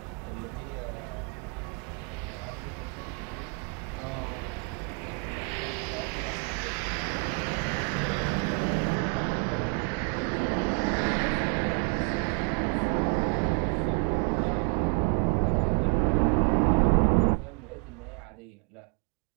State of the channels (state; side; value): quieter; left; 38.2 dB